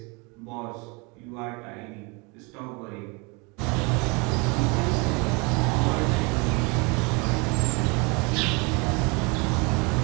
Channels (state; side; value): quieter; left; 29.3 dB